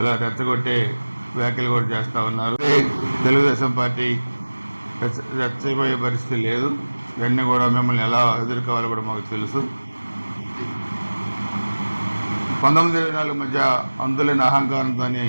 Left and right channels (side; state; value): both; inverted; correlation -1.00